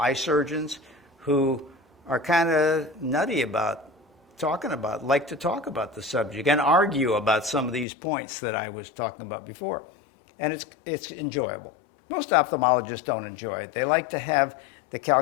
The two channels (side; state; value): right; drops out; at 7.9 s